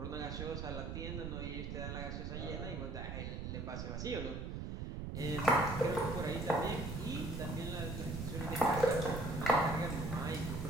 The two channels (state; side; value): noise; right; rumble, 4 dB below the sound